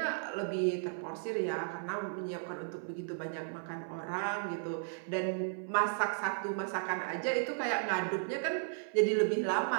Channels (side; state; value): left; silent; 55 dB below the other